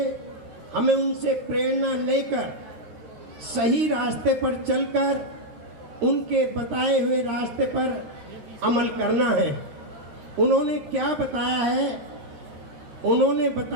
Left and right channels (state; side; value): late; left; 13 ms